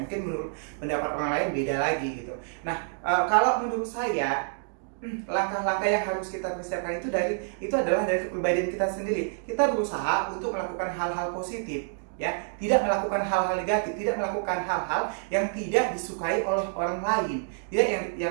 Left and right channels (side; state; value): left; silent; digital silence